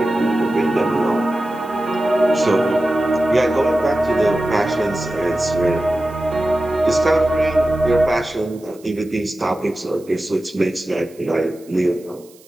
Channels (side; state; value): right; noise; hiss, 27 dB below the sound